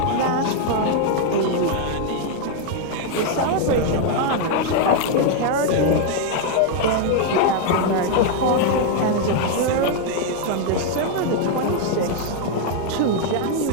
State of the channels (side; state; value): both; different; correlation 0.00